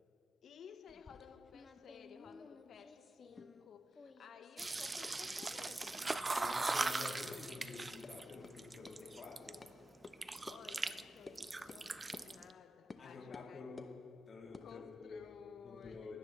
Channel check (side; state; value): both; normal; correlation 0.92